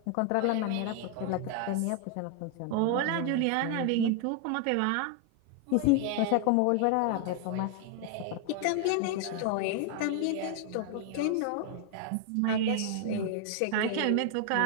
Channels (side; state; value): both; different; correlation 0.00